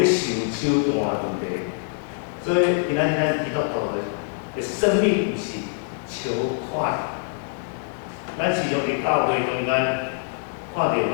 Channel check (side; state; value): right; silent; 62 dB below the other